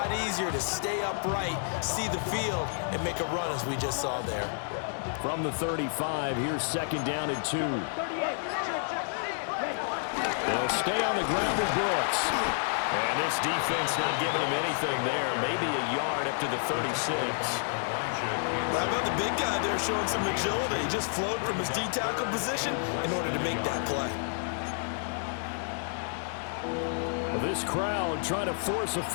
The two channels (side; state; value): right; silent; digital silence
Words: easier to stay upright, see the field, and make a run as we just saw there. From the 35, here's 2nd down and 2. They'll stay on the ground with Brooks. And this defense not giving him anything there. Maybe a yard up to the 36. How about the big guy there showing some agility? He just flowed from his D-tackle position in order to make that play. This crowd trying to force a